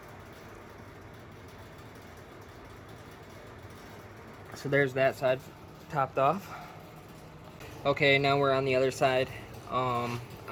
So there's that side topped off. Okay, now we're on the other side.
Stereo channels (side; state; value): both; identical; correlation 1.00